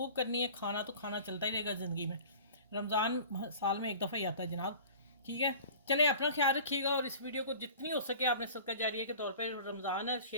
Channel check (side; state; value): both; inverted; correlation -0.42